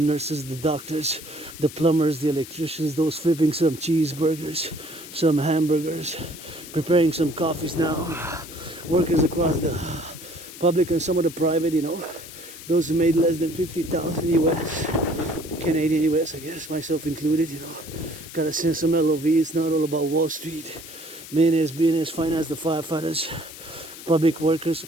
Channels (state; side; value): noise; left; hiss, 15 dB below the sound